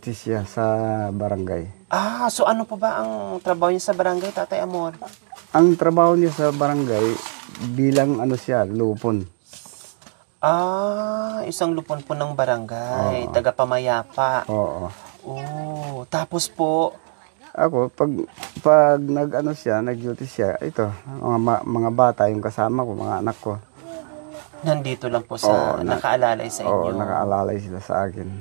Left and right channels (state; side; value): silent; left; 60 dB below the other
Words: siya sa barangay. Ah, so ano po ba ang trabaho niya sa barangay, Tatay Amor? Ang trabaho niya sa barangay, bilang ano siya, lupon. Ah, isang lupon po ng barangay, taga-pamayapa. Oo. Oh, tapos po, Ako, pag nag-ano siya, nag-duty siya, ito, mga bata, yung kasama ko, mga anak ko. nandito lang po sa, nakaalalay sa Oo, inyo. nakaalalay sila sa akin.